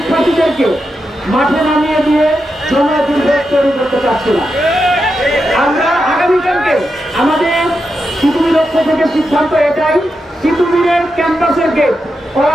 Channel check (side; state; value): both; normal; correlation 0.87